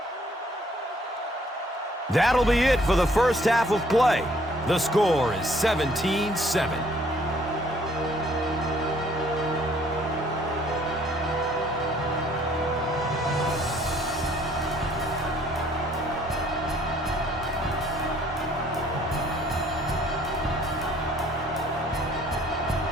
That'll be it for the first half of play. The score is 17-7.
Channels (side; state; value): both; normal; correlation 0.61